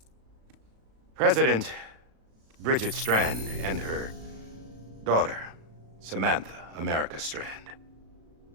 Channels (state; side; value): late; left; 36 ms